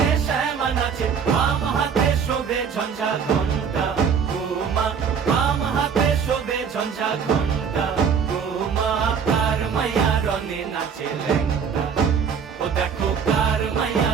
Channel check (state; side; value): quieter; left; 6.7 dB